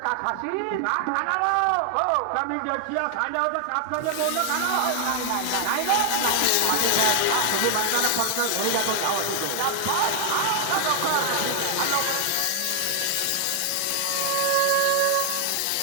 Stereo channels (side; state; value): both; different; correlation 0.00